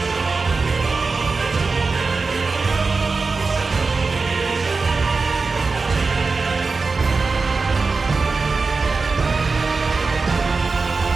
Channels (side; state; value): left; quieter; 4.2 dB